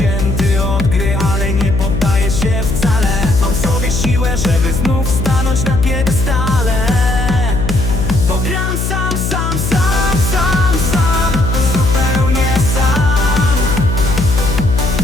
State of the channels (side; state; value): left; noise; hum, 2 dB below the sound